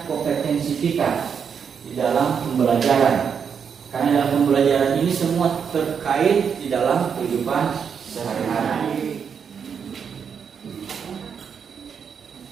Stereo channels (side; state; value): left; quieter; 6.9 dB